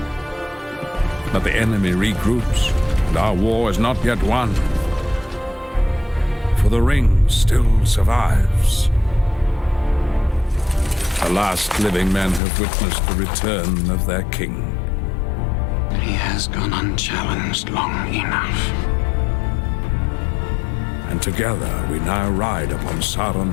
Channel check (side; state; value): right; drops out; at 12.4 s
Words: But the enemy regroups, and our war is not yet won. For the ring still survives. The last living men have witnessed the return of their king. He has gone unchallenged long enough. And together we now ride upon